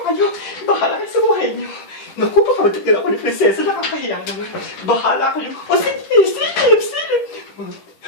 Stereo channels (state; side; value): late; right; 10 ms